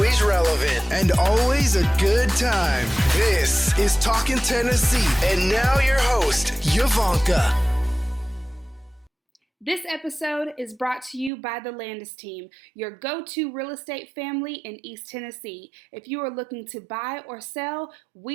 relevant, and always a good time. This is Talkin' Tennessee, and now your host, Yvonnca. This episode is brought to you by the Landes team, your go-to real estate family in East Tennessee. If you are looking to buy or sell,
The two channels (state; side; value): drops out; left; at 11.3 s